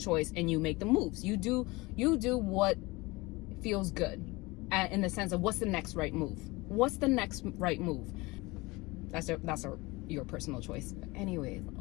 and you make the moves. You do what feels good, in the sense of, what's the next right move? What's the next right move? That's a your personal choice. But anyways,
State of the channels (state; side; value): quieter; right; 23.0 dB